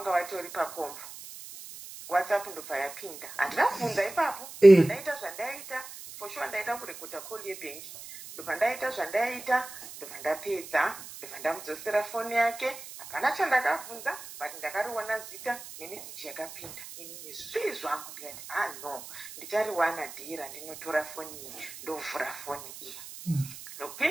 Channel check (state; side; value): noise; right; hiss, 14 dB below the sound